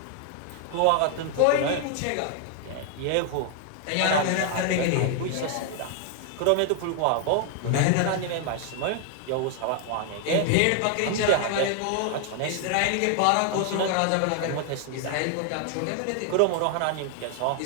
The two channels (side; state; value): both; different; correlation 0.00